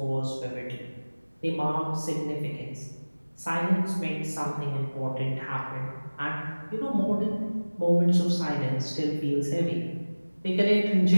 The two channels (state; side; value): inverted; both; correlation -1.00